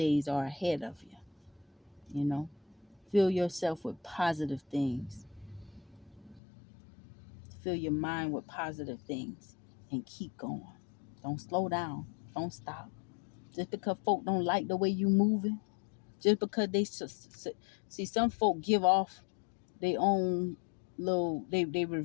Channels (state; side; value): drops out; right; at 6.4 s